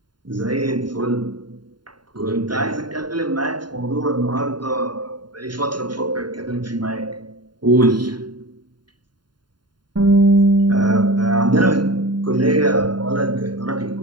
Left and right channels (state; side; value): late; left; 0.71 ms